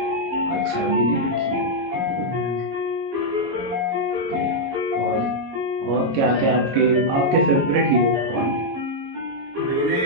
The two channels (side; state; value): left; late; 22 ms